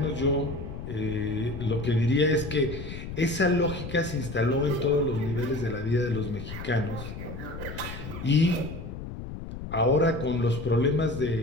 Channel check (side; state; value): left; noise; rumble, 9 dB below the sound